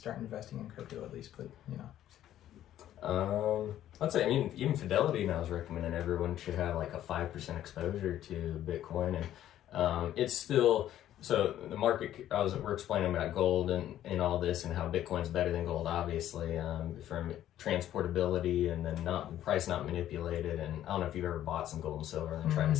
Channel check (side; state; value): right; quieter; 12.1 dB